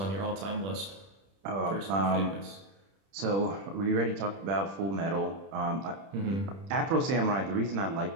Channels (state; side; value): late; left; 31 ms